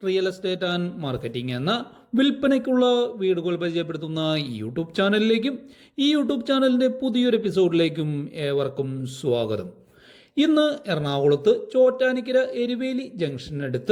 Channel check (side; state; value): both; identical; correlation 1.00